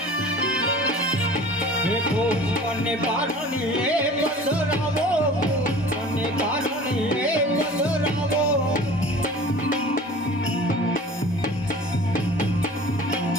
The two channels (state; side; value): normal; both; correlation 0.43